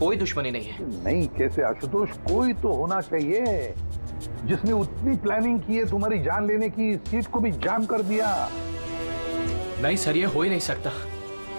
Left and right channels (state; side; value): inverted; both; correlation -1.00